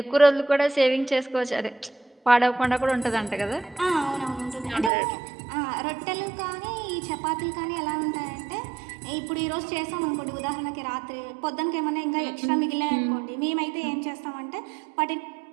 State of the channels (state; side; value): drops out; left; at 4.9 s